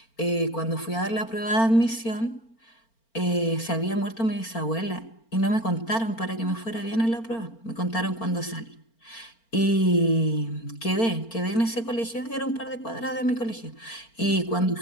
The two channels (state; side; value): late; right; 4.4 ms